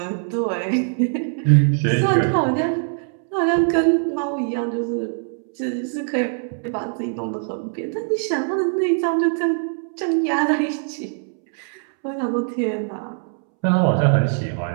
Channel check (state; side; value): silent; left; 64 dB below the other